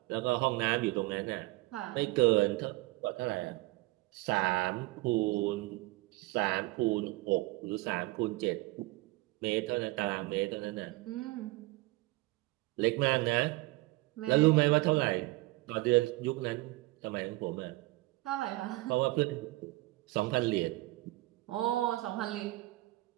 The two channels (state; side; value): quieter; left; 20.8 dB